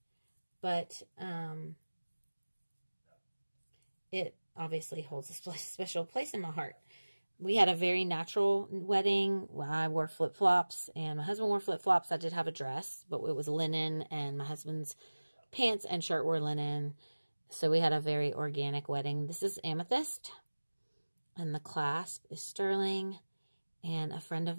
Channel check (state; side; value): inverted; both; correlation -1.00